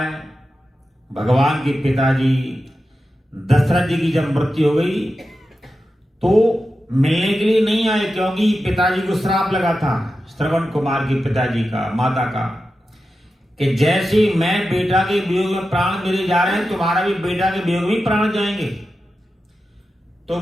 भगवान के पिताजी दशरथ जी की जब मृत्यु हो गई तो मिलने के लिए नहीं आए, क्योंकि पिताजी को श्राप लगा था श्रवण कुमार के पिताजी का, माता का, कि जैसे मैं बेटा के वियोग में प्राण मेरे जा रहे हैं, तुम्हारा भी बेटा के वियोग में प्राण जाएंगे। तो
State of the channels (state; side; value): normal; both; correlation 0.91